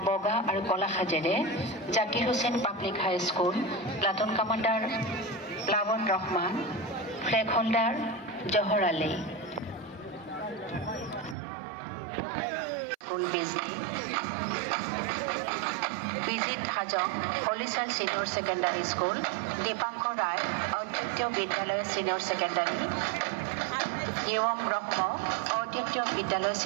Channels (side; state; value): left; drops out; at 11.4 s